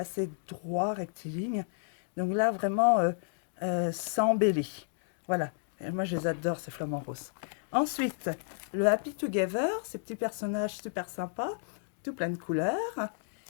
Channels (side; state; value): right; silent; digital silence